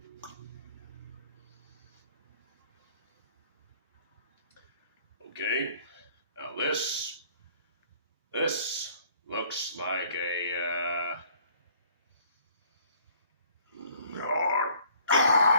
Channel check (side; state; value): both; inverted; correlation -0.57